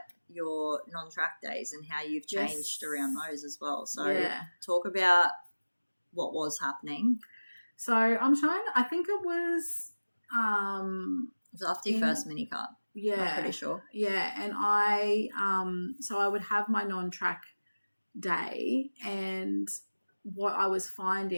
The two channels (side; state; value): both; inverted; correlation -1.00